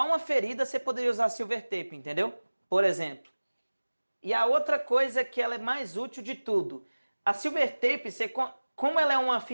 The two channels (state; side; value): inverted; both; correlation -1.00